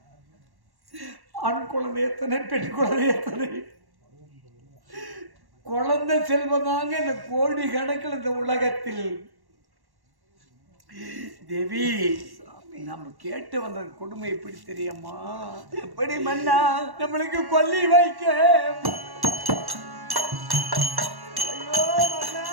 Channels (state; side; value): late; left; 1.1 ms